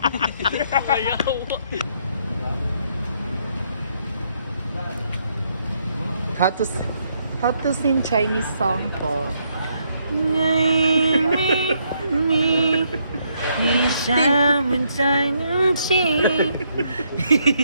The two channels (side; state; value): both; inverted; correlation -0.74